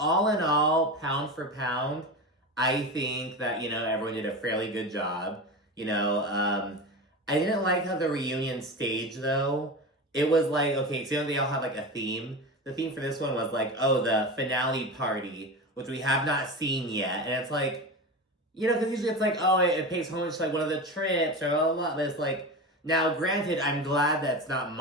in all, pound for pound, I think that, everyone did a fairly good job. I didn't like how the reunion stage, though. It was like, okay, so they all have like a theme. The theme for this one was like, oh, the finale party, which we have not seen yet. And it's like, because usually it's like, oh, it pays homage to like one of the trips or blah, blah, blah. But it's like, now granted, I'm glad that it's not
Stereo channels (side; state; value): both; normal; correlation 0.25